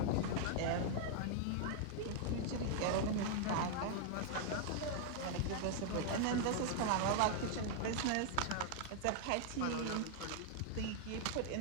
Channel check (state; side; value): different; both; correlation 0.00